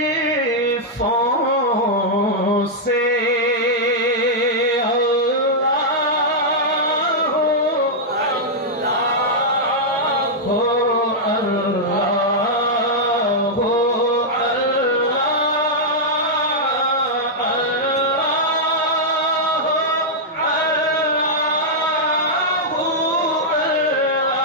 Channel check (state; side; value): normal; both; correlation -0.06